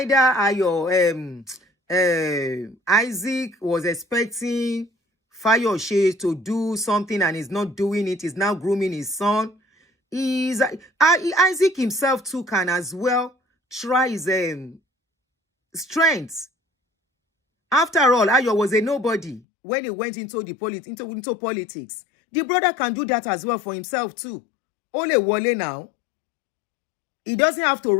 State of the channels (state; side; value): drops out; right; at 19.4 s